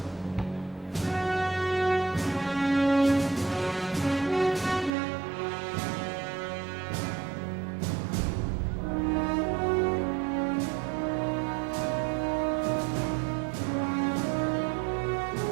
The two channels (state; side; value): drops out; left; at 4.9 s